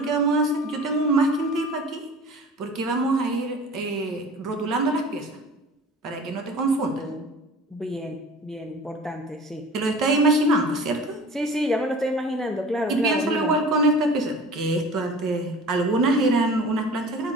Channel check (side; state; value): both; normal; correlation 0.41